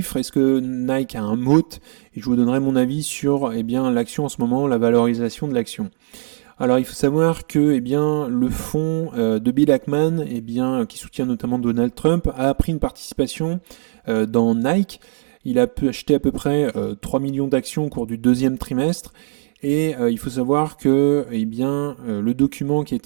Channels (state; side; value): silent; left; digital silence